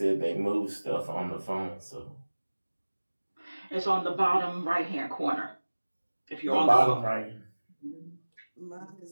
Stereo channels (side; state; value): both; inverted; correlation -1.00